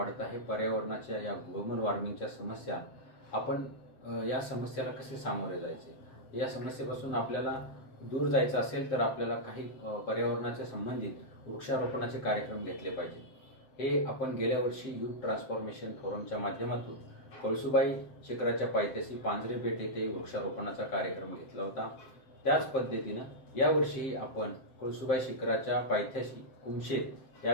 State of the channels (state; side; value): late; right; 7.7 ms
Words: आहे, पर्यावरणाच्या या ग्लोबल वॉर्मिंगच्या समस्या आपण या समस्याला कसे सामोरे जायचे, या समस्येपासून आपल्याला दूर जायचं असेल तर आपल्याला काही पर्यावरणाच्या संबंधित वृक्षारोपणाचे कार्यक्रम घेतले पाहिजे। हे आपण गेल्या वर्षी यूथ ट्रान्सफॉर्मेशन फोरमच्या माध्यमातून कळसुबाई शिखराच्या पायथ्याशी पांजरेपेठ येथे वृक्षारोपणाचा कार्यक्रम घेतला होता। त्याच पद्धतीनं यावर्षी आपण कळसुबाई शिखराच्या पायथ्याशी कुमशेत